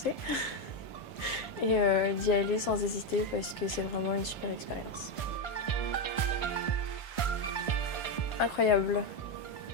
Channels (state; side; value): late; right; 1.5 ms